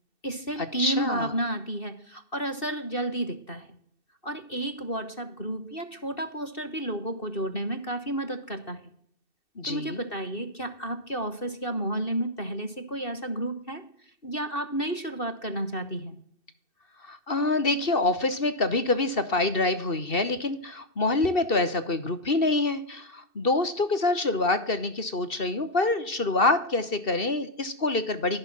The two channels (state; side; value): late; right; 2.7 ms